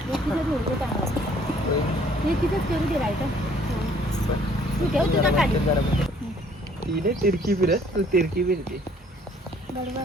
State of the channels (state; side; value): normal; both; correlation 0.60